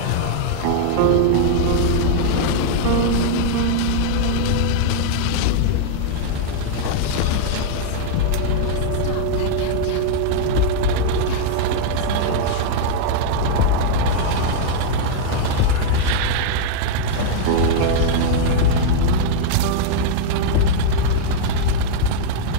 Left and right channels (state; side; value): different; both; correlation -0.01